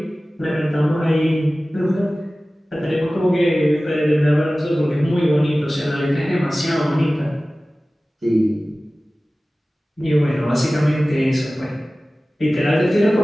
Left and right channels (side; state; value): both; normal; correlation 0.97